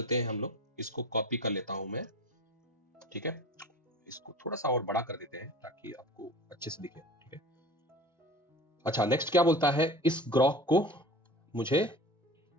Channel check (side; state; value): both; normal; correlation 0.38